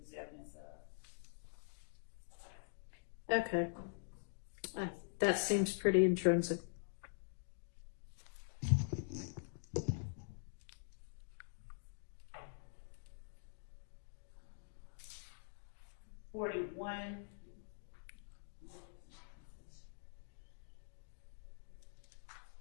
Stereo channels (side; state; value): right; silent; digital silence